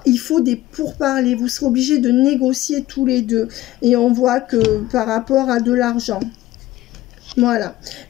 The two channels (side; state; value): right; quieter; 16.0 dB